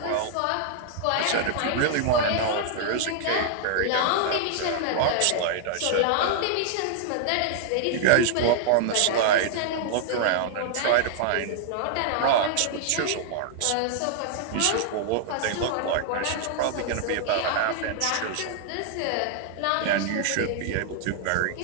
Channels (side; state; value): both; different; correlation -0.01